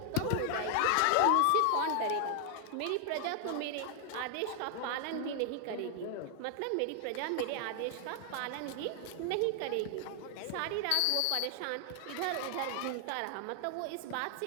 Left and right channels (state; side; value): different; both; correlation 0.00